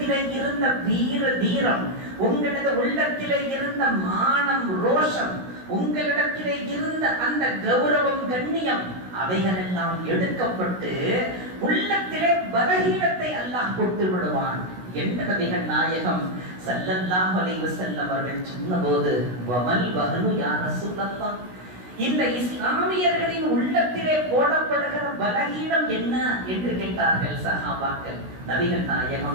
இருந்த வீர தீரம், உங்களது உள்ளத்திலே இருந்த மானம் ரோஷம், உங்களிடத்திலே இருந்த அந்த கௌரவம் கண்ணியம் அவைகளெல்லாம் எடுக்கப்பட்டு உள்ளத்திலே பலகீனத்தை அல்லாஹ் கொடுத்து விடுவான் என்று நபிகள் நாயகம் ஸல்லல்லாஹு அலைஹி வஸல்லம் அவர்கள் சொன்னபோது, வமல் வஹனு யா ரசூலல்லாஹ், இந்த இஸ்லாமியர்களின் உள்ளத்திலே போடப்படுகிற பலகீனம் என்ன என்று கேட்டார்கள் சஹாபாக்கள். நபிகள்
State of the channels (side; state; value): left; late; 16 ms